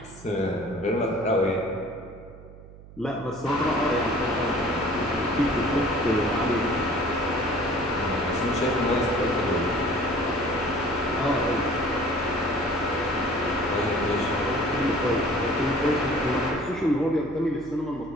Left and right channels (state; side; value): noise; right; hum, 19 dB below the sound